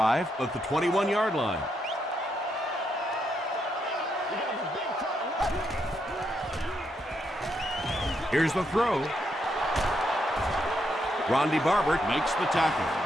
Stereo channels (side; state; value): both; normal; correlation 0.79